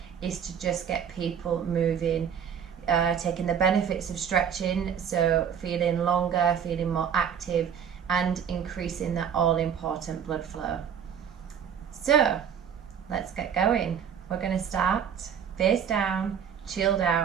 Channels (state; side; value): quieter; left; 8.0 dB